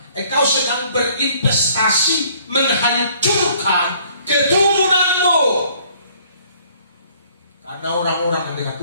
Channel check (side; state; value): both; inverted; correlation -0.59